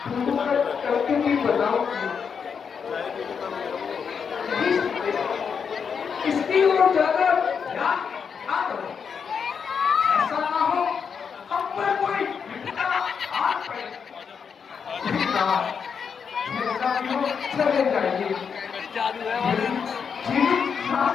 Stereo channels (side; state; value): right; quieter; 6.5 dB